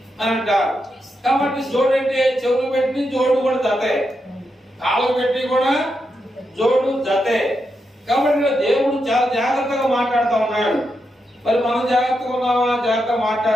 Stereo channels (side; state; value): both; normal; correlation 0.85